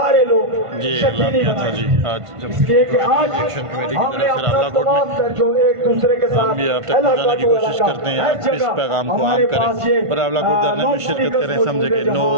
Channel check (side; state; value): left; late; 1.5 ms